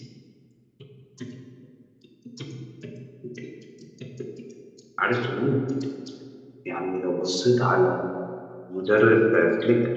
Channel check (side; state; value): both; identical; correlation 1.00